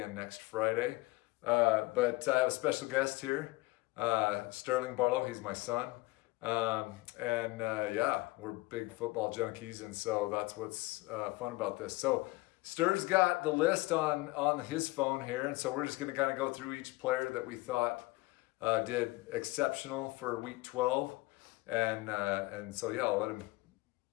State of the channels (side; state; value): right; quieter; 22.1 dB